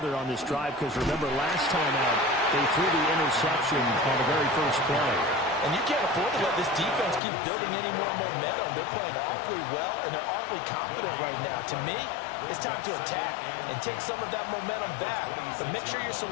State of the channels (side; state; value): right; drops out; at 7.2 s